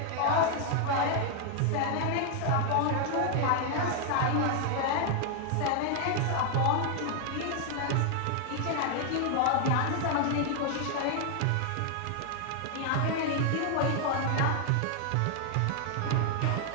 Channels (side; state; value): both; different; correlation 0.00